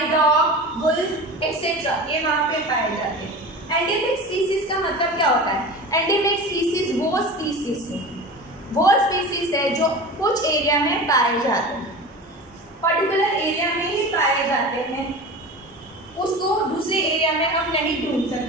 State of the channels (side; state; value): both; normal; correlation 0.32